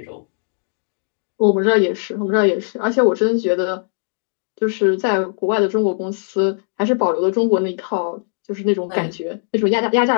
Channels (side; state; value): right; silent; digital silence